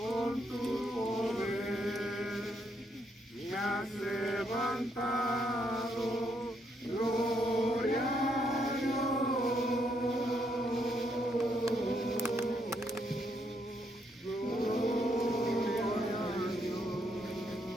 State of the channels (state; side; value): normal; both; correlation 0.75